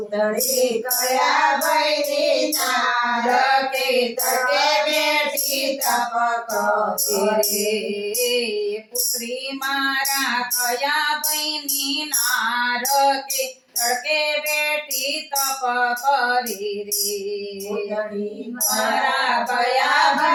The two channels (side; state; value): both; identical; correlation 1.00